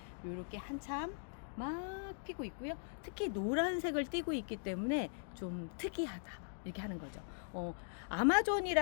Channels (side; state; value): right; silent; digital silence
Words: 이렇게 한참 막 피고 있고요. 특히 노란색을 띠고 있기 때문에 좀 특이하다 이렇게 하는 거죠.